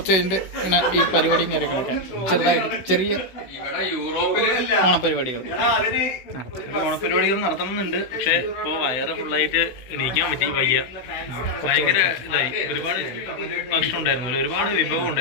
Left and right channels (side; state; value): right; late; 16 ms